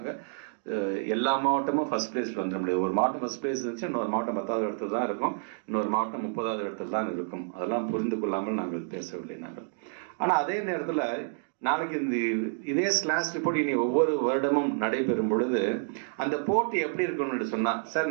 எல்லா மாவட்டமும் ஃபர்ஸ்ட் பிளேஸ்ல வந்துட முடியாது. ஒரு மாவட்டம் ஃபர்ஸ்ட் பிளேஸ் இருந்துச்சு, இன்னொரு மாவட்டம் 10வது இடத்துல தான் இருக்கும், இன்னொரு மாவட்டம் 30வது இடத்துல தான் இருக்கும். அதெல்லாம் புரிந்து கொள்ளாமல் நாங்கள் பேசவில்லை நாங்கள். ஆனால் அதே நேரத்தில் நாளைக்கு இதே ஸ்லாஷ் ரிப்போர்ட் இனி ஒவ்வொரு வருடமும் நடைபெறும் பொழுது அந்த போட்டி எப்படி இருக்கும்னு சொன்னா,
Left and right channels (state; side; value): silent; left; digital silence